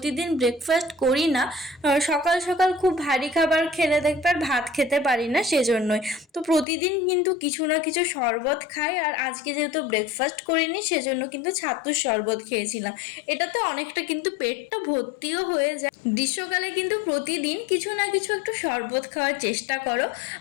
ব্রেকফাস্ট করি না। সকাল সকাল খুব ভারী খাবার খেলে দেখবে আর ভাত খেতে পারি না, সেজন্যই। তো প্রতিদিন কিন্তু কিছু না কিছু শরবত খাই, আর আজকে যেহেতু ব্রেকফাস্ট করিনি সেজন্য কিন্তু ছাতুর শরবত খেয়েছিলাম। এটাতে অনেকটা কিন্তু পেটটা ভর্তিও হয়ে যায়। গ্রীষ্মকালে কিন্তু প্রতিদিন কিছু না কিছু একটু শরবত খাওয়ার চেষ্টা করো।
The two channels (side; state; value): right; drops out; at 6.7 s